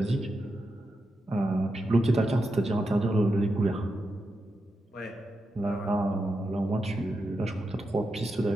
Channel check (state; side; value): normal; both; correlation 0.87